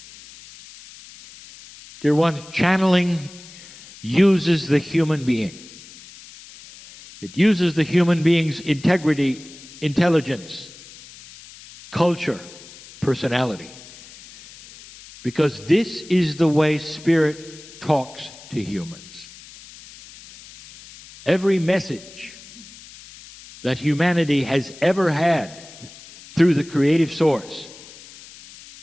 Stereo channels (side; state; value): left; noise; hiss, 19 dB below the sound